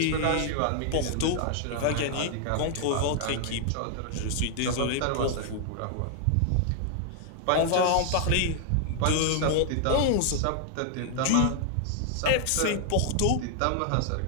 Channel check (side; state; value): both; different; correlation 0.00